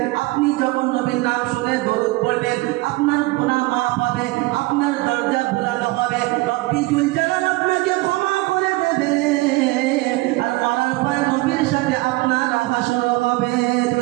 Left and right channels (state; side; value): quieter; left; 21.4 dB